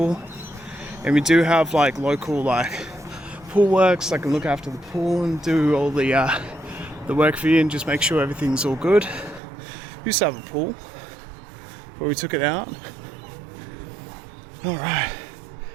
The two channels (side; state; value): left; drops out; at 9.4 s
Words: And we do have like local like pool works that can look after the pool and do all the the work for you and just make sure everything's all good. We used to have a pool, but we took it out. Alright,